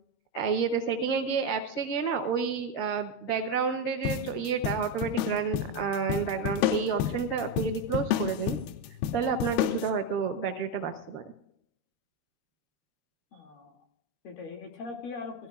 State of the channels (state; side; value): late; right; 13 ms